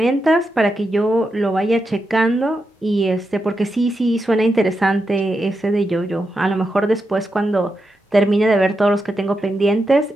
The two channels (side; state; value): both; normal; correlation 0.87